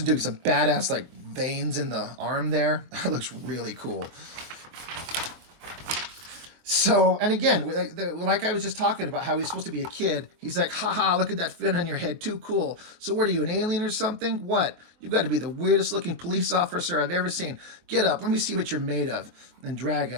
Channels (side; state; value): left; late; 24 ms